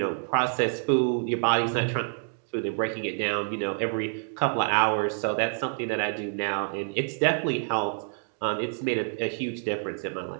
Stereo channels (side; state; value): left; silent; digital silence